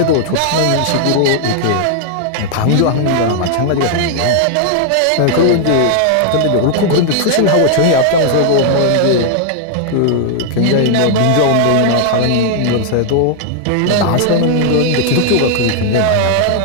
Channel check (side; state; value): both; different; correlation 0.00